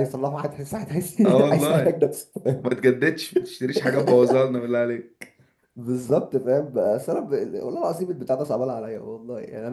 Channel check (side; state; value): both; identical; correlation 1.00